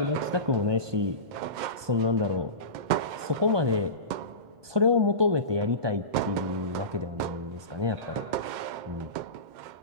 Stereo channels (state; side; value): late; left; 1.2 ms